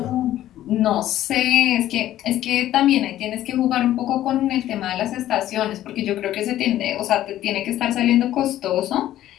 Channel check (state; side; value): quieter; right; 13.2 dB